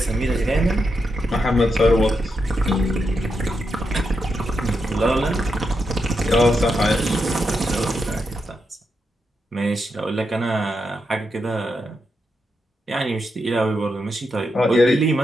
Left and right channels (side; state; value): both; normal; correlation 0.84